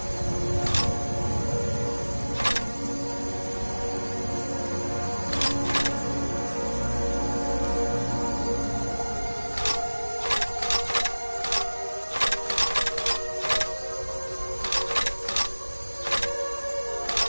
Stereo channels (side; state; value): both; inverted; correlation -1.00